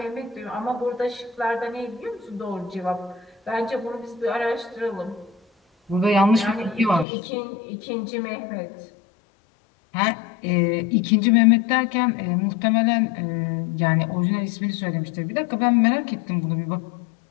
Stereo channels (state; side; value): drops out; right; at 7.1 s